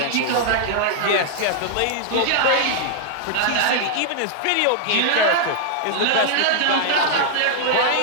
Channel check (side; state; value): both; different; correlation -0.01